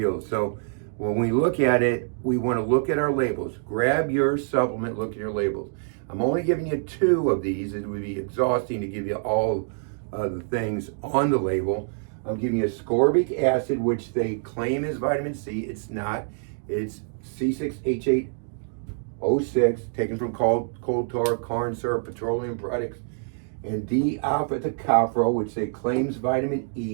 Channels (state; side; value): silent; left; digital silence